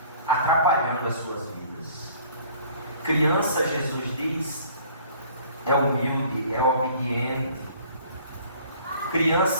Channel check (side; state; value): both; inverted; correlation -0.53